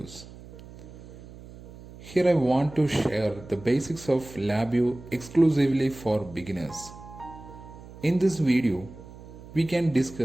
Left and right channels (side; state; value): right; noise; hum, 17 dB below the sound